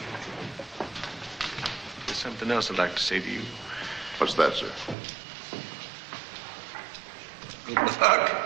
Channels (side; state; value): left; drops out; at 5.0 s